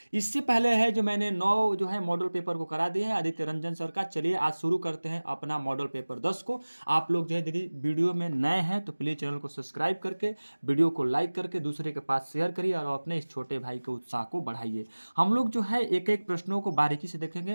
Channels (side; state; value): both; inverted; correlation -1.00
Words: इससे पहले है जो मैंने 9 जो है मॉडल पेपर को करा दिए हैं आदित्य रंजन सर का। चलिए आज शुरू करते हैं अपना मॉडल पेपर 10 को। आप लोग जो है यदि वीडियो में नए हैं तो प्लीज चैनल को सब्सक्राइब करके वीडियो को लाइक करके दूसरे के पास शेयर करिए और अपने इस छोटे भाई के उत्साह को बढ़ाइए। हम लोग जो है एक एक प्रश्नों को बारीकी से देखेंगे,